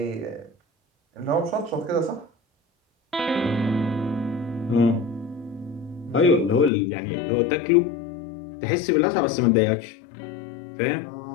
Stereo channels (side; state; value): right; drops out; at 6.7 s